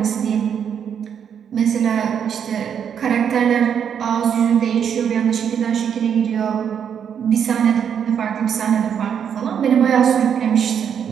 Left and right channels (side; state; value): left; quieter; 8.0 dB